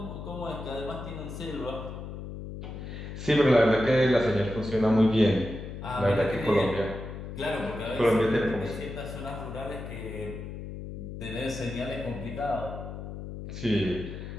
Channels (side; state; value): left; noise; hum, 9 dB below the sound